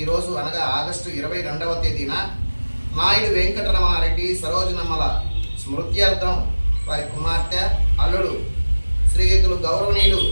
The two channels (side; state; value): both; inverted; correlation -1.00